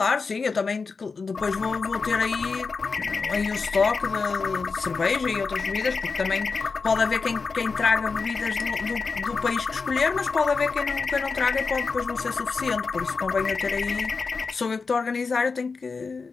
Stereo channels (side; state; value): right; quieter; 4.7 dB